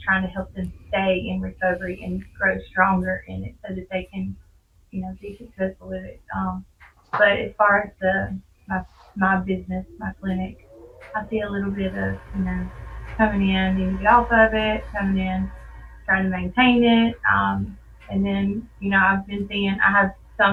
trying to help them stay in recovery and grow stronger in it so that they can, be successful with it. But as far as my my business, my clinic, I see a little bit of, coming in, needing to get off of it, coming in, trying to maintain it. And then, I've been seeing, I have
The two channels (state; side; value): identical; both; correlation 1.00